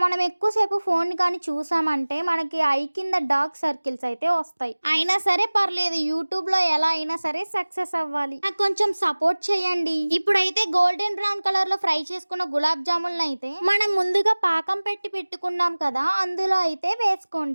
మనం ఎక్కువసేపు ఫోన్ కానీ చూసామంటే మనకి ఐ కింద డార్క్ సర్కిల్స్ అయితే వస్తాయి. అయినా సరే పర్లేదు, యూట్యూబ్ లో ఎలా అయినా సరే సక్సెస్ అవ్వాలి. నాకు కొంచెం సపోర్ట్ చేయండి. ఇప్పుడైతే గోల్డెన్ బ్రౌన్ కలర్ లో ఫ్రై చేసుకున్న గులాబ్ జాములను అయితే మనం ముందుగా పాకం పెట్టుకున్నాం కదా, అందులో అయితే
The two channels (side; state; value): both; inverted; correlation -1.00